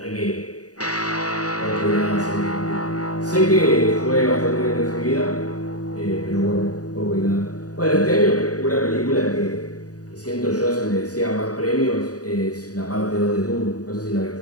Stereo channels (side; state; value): right; late; 0.68 ms